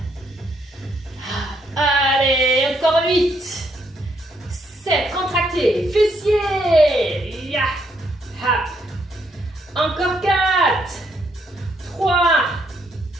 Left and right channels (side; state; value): both; normal; correlation 0.73